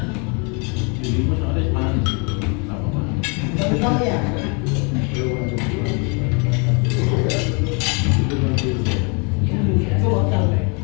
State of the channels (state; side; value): quieter; right; 34.3 dB